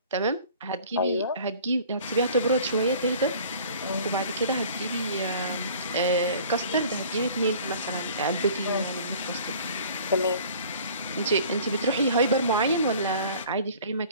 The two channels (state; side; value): inverted; both; correlation -0.49